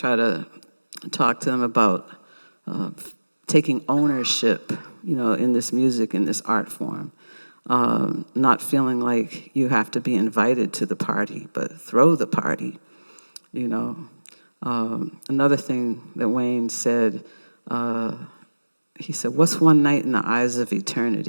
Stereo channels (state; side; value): inverted; both; correlation -1.00